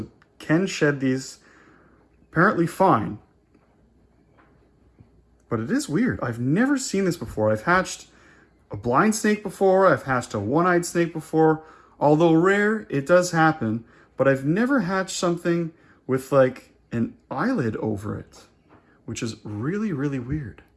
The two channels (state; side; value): identical; both; correlation 1.00